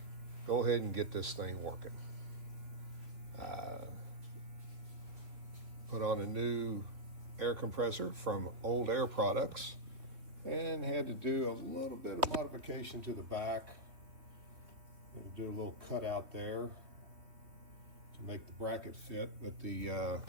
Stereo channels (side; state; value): left; late; 3.2 ms